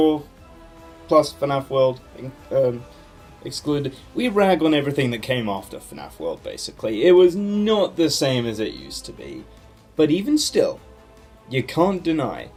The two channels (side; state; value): both; identical; correlation 1.00